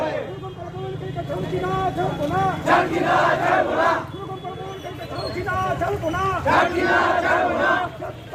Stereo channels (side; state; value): both; identical; correlation 1.00